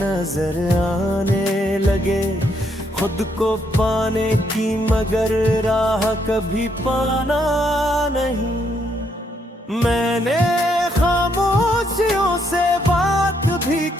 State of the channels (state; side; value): normal; both; correlation 0.74